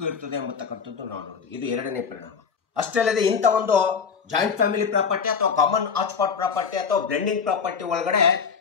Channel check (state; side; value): quieter; right; 6.1 dB